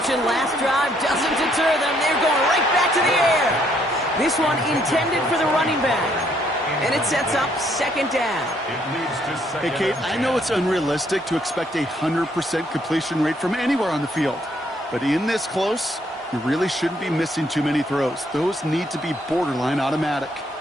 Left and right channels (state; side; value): normal; both; correlation 0.69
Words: last drive doesn't deter them. They're going right back to the air. This one intended for the running back. And it sets up 2nd down. It leads to 2nd Hey, Kate, and I 10. know it's unrealistic to expect a 100% completion rate from anywhere on the field. But in this close, you really shouldn't be missing too many throws. Those need to be borderline automatic.